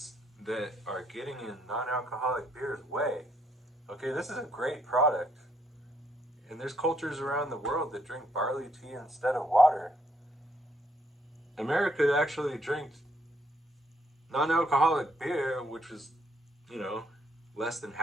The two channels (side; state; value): both; normal; correlation 0.72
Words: that are getting in non-alcoholic beer's way. Okay, this is a great product, and there's cultures around the world that drink barley tea instead of water. America actually drinks non-alcoholic beer, which was, you know, less than